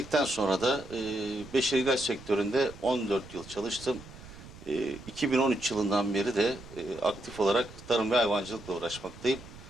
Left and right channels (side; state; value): right; noise; rumble, 17 dB below the sound